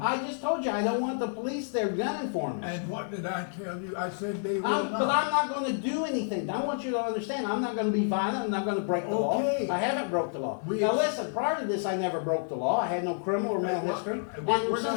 I just told you I don't want the police there gunning for me. And what did I tell you? I said they will not. But I'm not going to do anything. I want you to understand. I'm not going to be violent. I'm not going to break the law. Okay. I haven't broke the law. We Now ex- listen, prior to this, I never broke the law. I had no criminal or mental Well, history. we're And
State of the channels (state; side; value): silent; right; digital silence